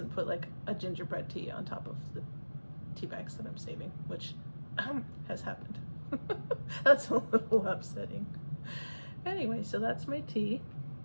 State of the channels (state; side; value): inverted; both; correlation -1.00